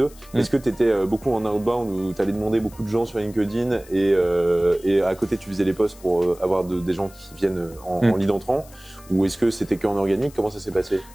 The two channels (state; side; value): noise; left; hiss, 23 dB below the sound